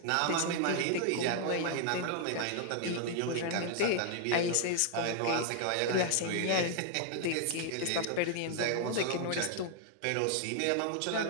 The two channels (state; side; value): different; both; correlation 0.00